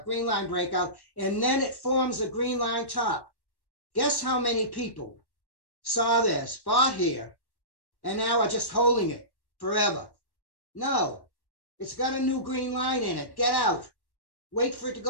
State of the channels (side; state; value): right; late; 1.1 ms